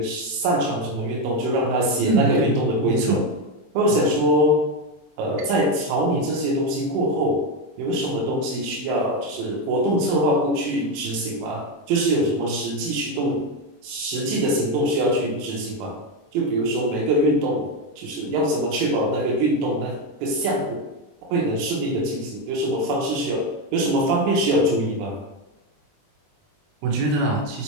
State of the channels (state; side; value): late; left; 20 ms